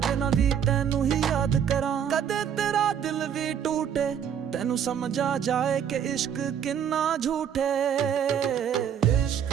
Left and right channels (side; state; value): left; quieter; 8.5 dB